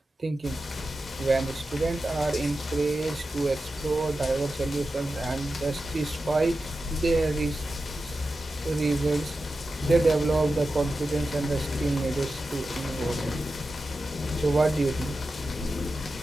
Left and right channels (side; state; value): both; normal; correlation 0.92